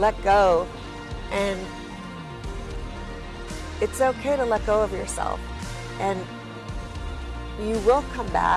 go. And it's okay to let go of yourself. And you will come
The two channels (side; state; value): both; identical; correlation 1.00